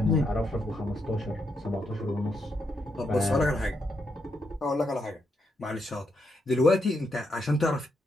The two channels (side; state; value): both; normal; correlation 0.80